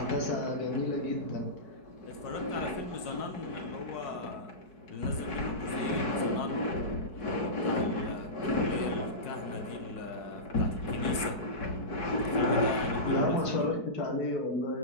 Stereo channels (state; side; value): late; right; 4.7 ms